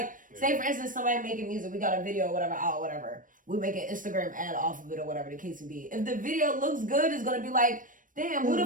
say for instance, somebody making music, we got a video or whatever. We make an Instagram ad off of it or whatever the case may be. If the video looks good, it's gonna be like, damn, who the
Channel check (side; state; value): left; late; 0.38 ms